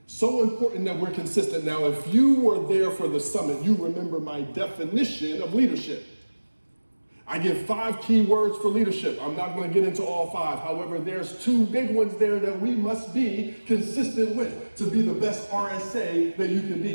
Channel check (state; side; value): inverted; both; correlation -1.00